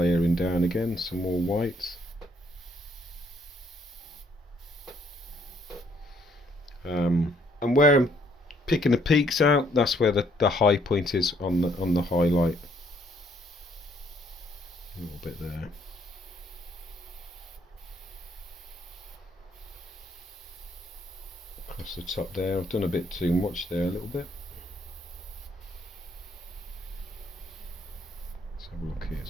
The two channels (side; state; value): both; normal; correlation 0.67